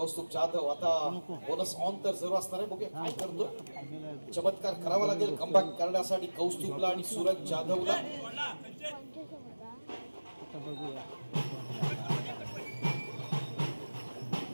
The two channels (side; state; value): both; inverted; correlation -1.00